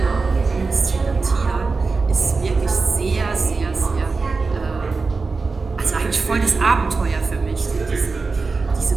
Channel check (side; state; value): left; quieter; 4.2 dB